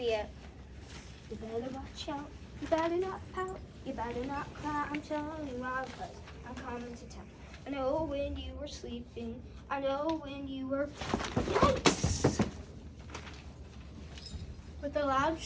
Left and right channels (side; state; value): both; identical; correlation 1.00